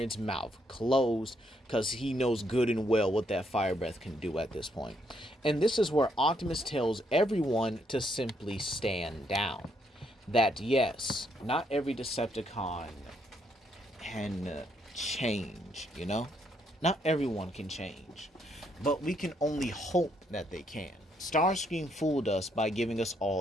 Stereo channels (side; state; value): both; normal; correlation 0.74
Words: mouth closed, because he knows good and well what that fire breath can do at this point. And this is where Optimus tells everyone to simply stand down. That yes, not every Decepticon can change, Not everyone can change. But we can only hope that they can. Starscream fooled us by giving us